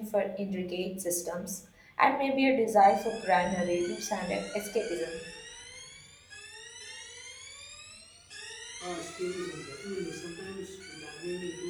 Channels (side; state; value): both; identical; correlation 1.00